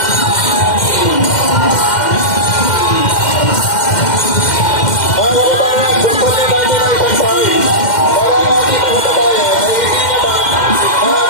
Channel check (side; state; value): right; late; 2.1 ms